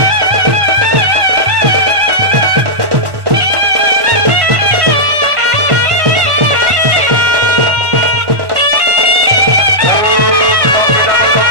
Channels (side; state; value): left; late; 1.1 ms